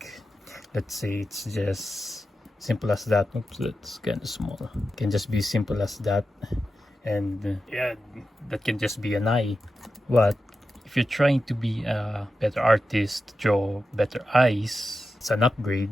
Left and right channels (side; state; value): both; normal; correlation 0.91